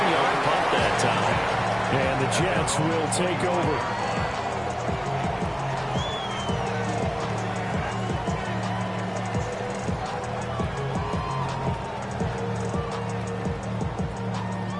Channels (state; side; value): identical; both; correlation 1.00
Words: punt that time. And the Jets will take over.